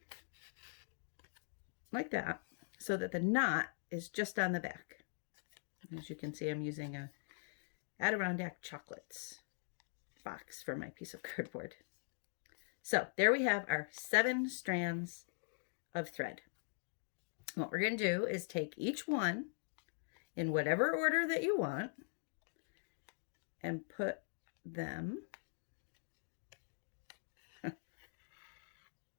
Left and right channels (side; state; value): right; silent; digital silence